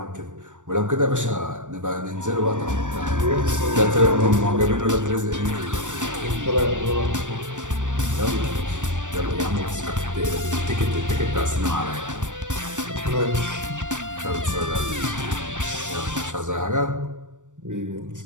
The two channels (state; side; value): late; left; 0.86 ms